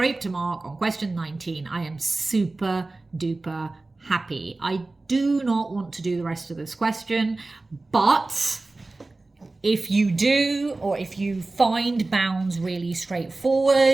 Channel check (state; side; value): quieter; left; 3.2 dB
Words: a mark on question 19. I am super duper happy. I do not want to do the rest of this question, but if you do, or if you find bounds really